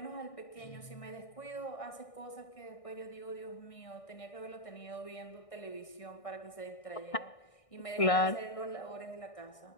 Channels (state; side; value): late; right; 1.6 ms